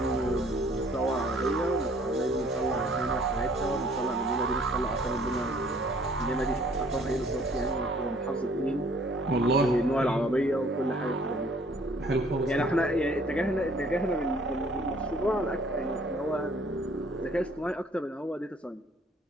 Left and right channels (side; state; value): both; normal; correlation 0.59